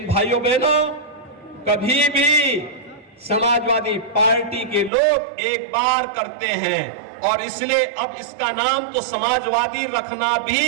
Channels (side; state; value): left; drops out; at 4.9 s